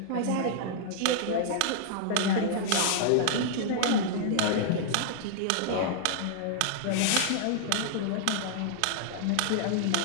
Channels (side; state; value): both; different; correlation -0.01